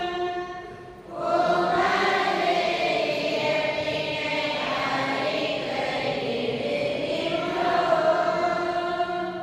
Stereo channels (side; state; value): both; identical; correlation 1.00